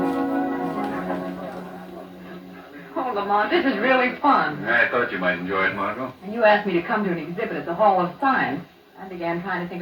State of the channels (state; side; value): identical; both; correlation 1.00